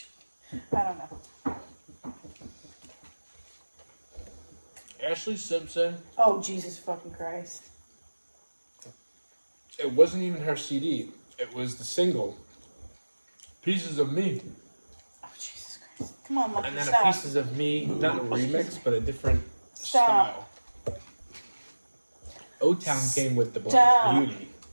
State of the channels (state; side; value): inverted; both; correlation -1.00